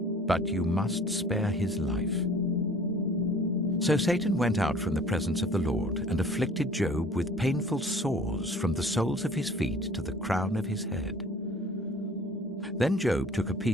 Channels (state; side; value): normal; both; correlation 0.50